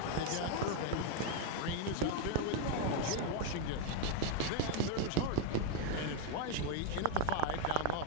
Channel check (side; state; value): both; different; correlation 0.01